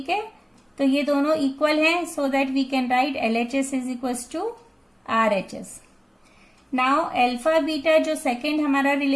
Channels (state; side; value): identical; both; correlation 1.00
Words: है, तो ये दोनों इक्वल हैं, so that we can write LHS is equal to RHS। Now alpha beta जो सेकेंड हमारा